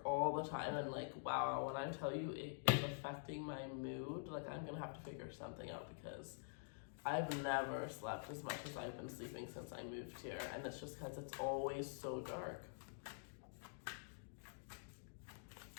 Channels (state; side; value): silent; right; digital silence